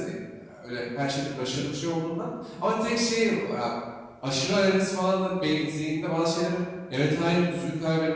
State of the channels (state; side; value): identical; both; correlation 1.00